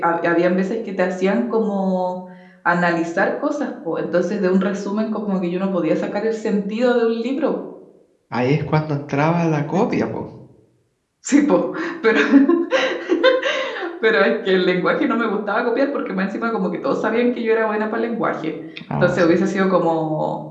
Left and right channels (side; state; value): both; identical; correlation 1.00